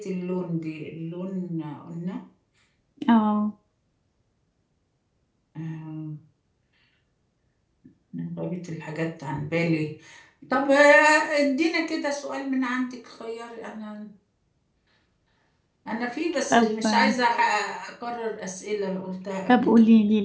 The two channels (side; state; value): both; identical; correlation 1.00